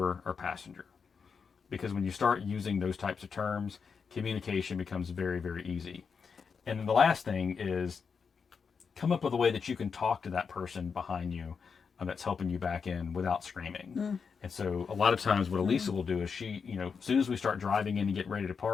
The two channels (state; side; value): quieter; right; 5.8 dB